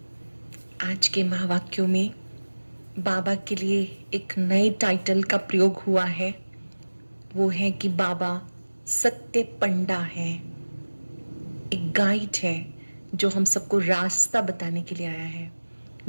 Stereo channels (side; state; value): both; inverted; correlation -1.00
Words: आज के महावाक्यों में बाबा के लिए एक नए टाइटल का प्रयोग हुआ है। वो है कि बाबा सत्य पंडा है, एक गाइड है जो हम सबको रास्ता बताने के लिए आया है।